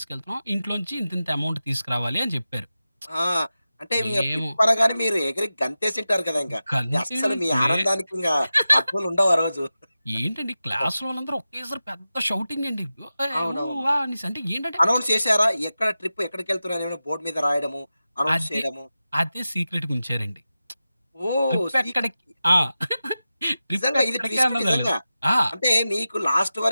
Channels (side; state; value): both; inverted; correlation -0.94